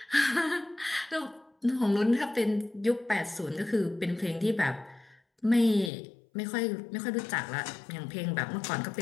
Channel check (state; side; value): drops out; right; at 5.9 s